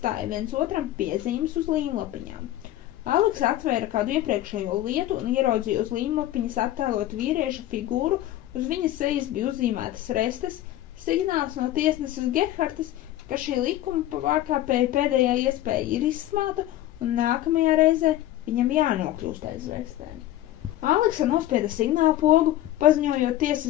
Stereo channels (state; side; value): quieter; right; 14.0 dB